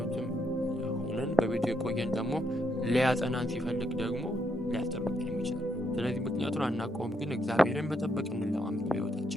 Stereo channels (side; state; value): both; normal; correlation 0.77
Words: ሆነን በቤቱ የቆየን ደግሞ ሊያጸናን ሲፈልግ ደግሞ ሊያስጠብቀን የሚችላል። ስለዚህ ምክንያቱን አናውቀውም፣ ግን እግዚአብሔርን መጠበቅ እንለማመድ